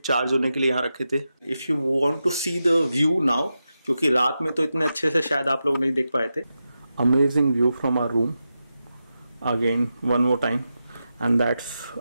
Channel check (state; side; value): inverted; both; correlation -0.90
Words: होने के लिए यहाँ रखे थे। If you want to see the view now, क्योंकि रात में तो इतने अच्छे से शायद आप लोग नहीं देख पाए थे। Amazing view from our room again one more time, and that's